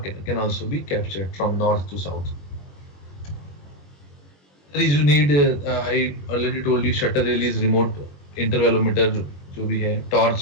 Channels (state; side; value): late; right; 21 ms